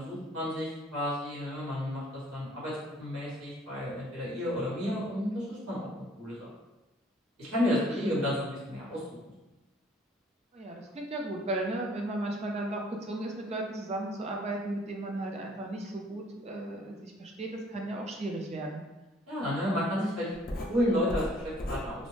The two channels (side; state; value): both; normal; correlation 0.59